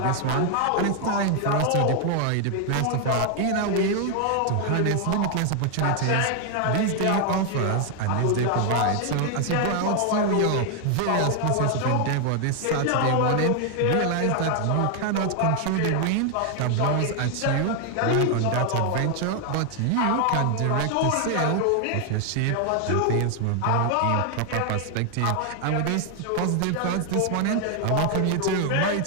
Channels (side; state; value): both; different; correlation 0.00